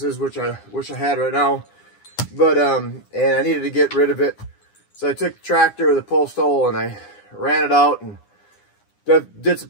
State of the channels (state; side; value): late; right; 9.8 ms